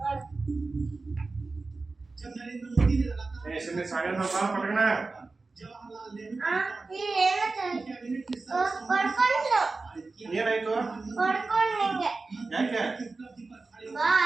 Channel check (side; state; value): left; quieter; 3.7 dB